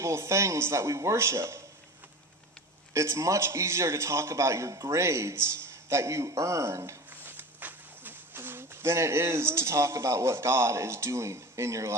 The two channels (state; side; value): normal; both; correlation 0.34